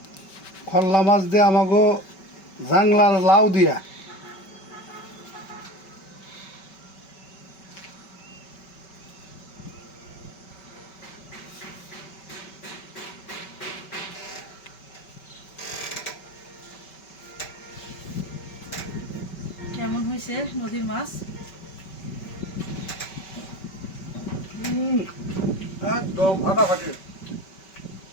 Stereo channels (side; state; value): right; late; 5.2 ms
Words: খল্লা মাছ দিয়ে আমাকে জাংলার লাউ দিয়া। কেমন হয়েছে নদীর মাছ? একদম ফাটাফাটি।